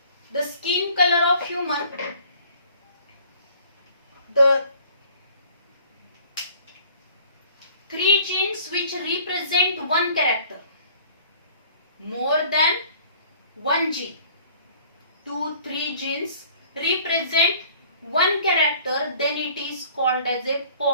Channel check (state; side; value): inverted; both; correlation -0.52